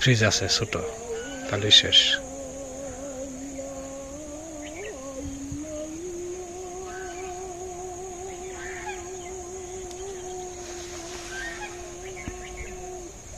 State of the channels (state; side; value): identical; both; correlation 1.00